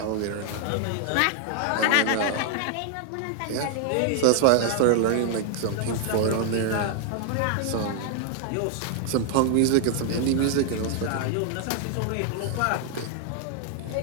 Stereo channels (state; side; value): different; both; correlation 0.00